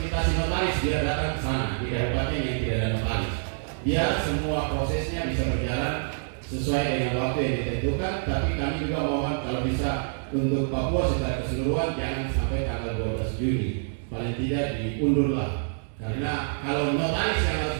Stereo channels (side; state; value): left; silent; 60 dB below the other